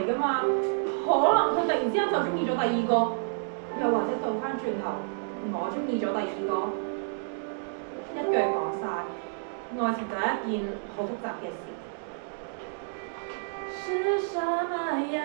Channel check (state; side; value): silent; left; digital silence